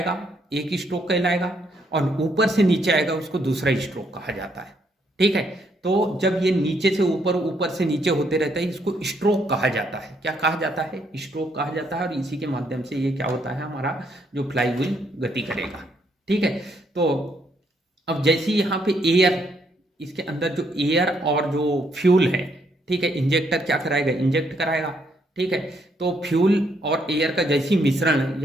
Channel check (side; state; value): both; normal; correlation 0.73